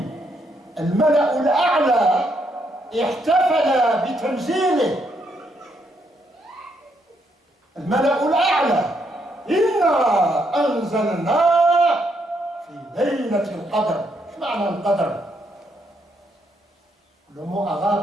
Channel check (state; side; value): normal; both; correlation 0.75